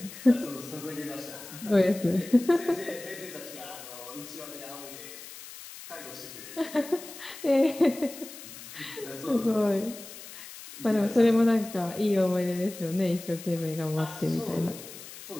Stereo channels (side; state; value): left; noise; hiss, 14 dB below the sound